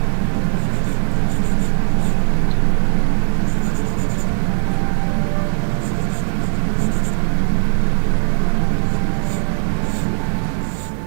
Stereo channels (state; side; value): silent; left; digital silence